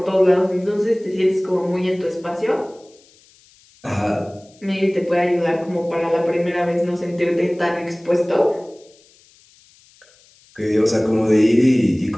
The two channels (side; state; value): left; noise; hiss, 29 dB below the sound